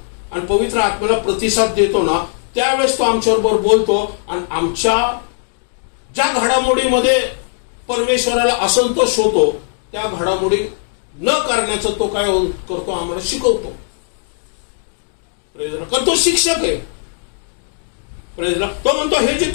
आणि पवित्र आत्म्याला प्रतिसाद देतो ना, त्यावेळेस तो आमच्याबरोबर बोलतो आणि आमच्या ज्या घडामोडीमध्ये परमेश्वराला असंतोष होतो त्या घडामोडी न करण्याचं तो काय करतो, आम्हाला शिकवतो. Praise the Lord. कारण तो शिक्षक आहे. Praise the Lord. तो म्हणतो हे जे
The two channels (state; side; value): silent; right; digital silence